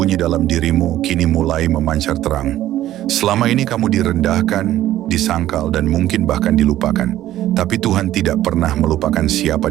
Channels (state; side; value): quieter; left; 13.5 dB